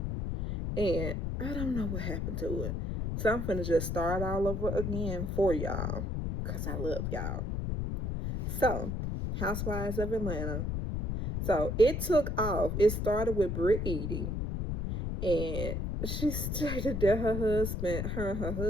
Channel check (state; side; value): noise; left; rumble, 2 dB below the sound